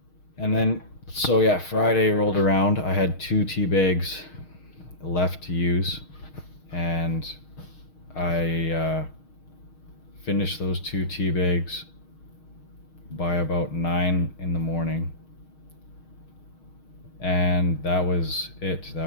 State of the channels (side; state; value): right; late; 6.4 ms